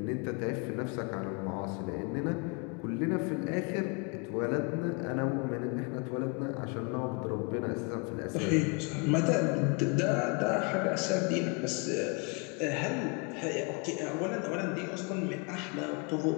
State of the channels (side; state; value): right; quieter; 33.2 dB